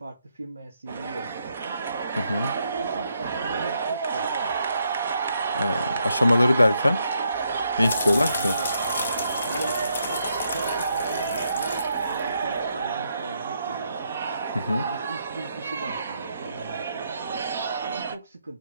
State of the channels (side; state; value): both; inverted; correlation -0.77